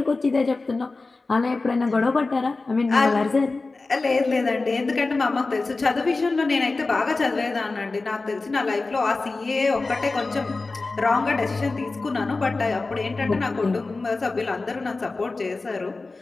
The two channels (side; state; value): right; quieter; 3.6 dB